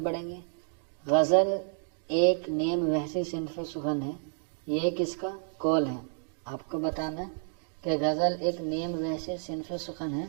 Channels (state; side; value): silent; left; digital silence